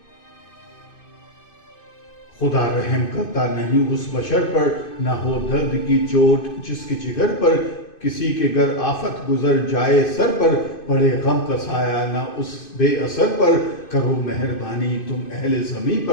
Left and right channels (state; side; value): late; right; 2.5 ms